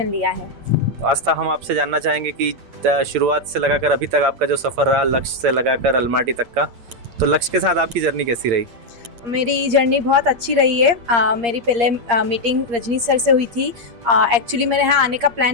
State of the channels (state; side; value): late; left; 8.8 ms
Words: लिया है। तो आस्था, हम आपसे जानना चाहेंगे कि शुरुआत से लगाकर अभी तक आपका जो सफ़र रहा, लक्ष्य से लगाकर अलमाटी तक का, तो लक्ष्य के साथ आपकी जर्नी कैसी रही? मेरी जर्नी बहुत अच्छी रही है। मेरी पहले मीटिंग रजनी सर से हुई थी। एक्चुअली मेरे यहाँ आने का प्लान